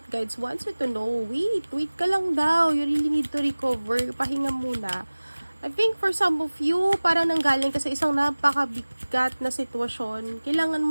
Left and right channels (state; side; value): inverted; both; correlation -1.00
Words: guides wants you to know. Wait ka lang daw. You really need to recover. Pahinga muna. I think for some of you, parang nanggaling ka sa isang napakabigat na sitwasyon. Kailangan